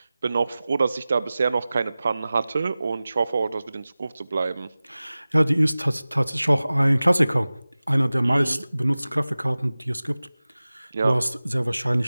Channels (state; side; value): inverted; both; correlation -0.97